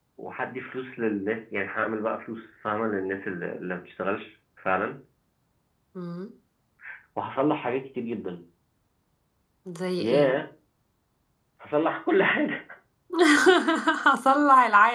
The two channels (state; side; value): identical; both; correlation 1.00